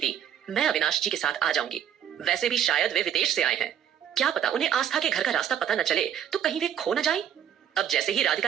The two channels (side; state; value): left; quieter; 9.5 dB